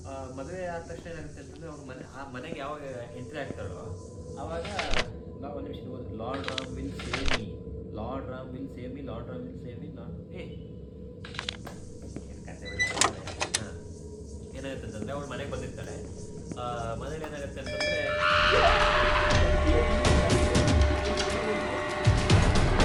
ಮದುವೆ ಆದ ತಕ್ಷಣ ಏನಾಗುತ್ತೆ ಅಂತಂದರೆ, ಆ ಮನೆಗೆ ಯಾವಾಗ ಎಂಟ್ರಿ ಆಗ್ತಾಳೋ ಆವಾಗ ಒಂದು ನಿಮಿಷ, lord Ram will save me, lord Ram will save me, lord Ram will save me, lord ಹಾಂ. ಏನಾಗುತ್ತೆ ಅಂತಂದರೆ, ಅವಳು ಮನೆಗೆ ಬಂದಿರ್ತಾಳೆ. ಮನೇಲಿ ಏನಾಗುತ್ತೆ ಅಂತಂದರೆ,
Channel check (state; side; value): identical; both; correlation 1.00